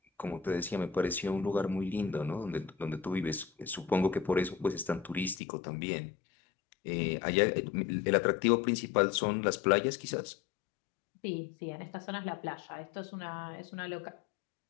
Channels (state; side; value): drops out; right; at 5.4 s